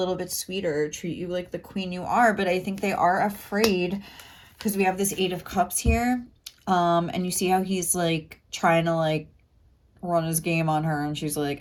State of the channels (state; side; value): identical; both; correlation 1.00